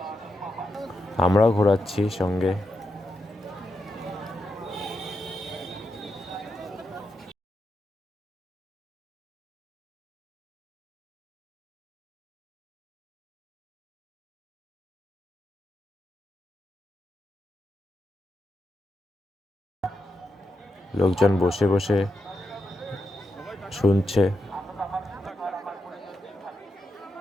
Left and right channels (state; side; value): normal; both; correlation 0.85